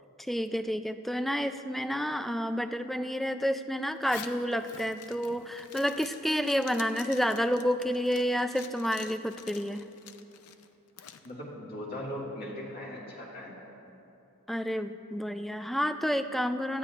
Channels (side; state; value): both; normal; correlation 0.88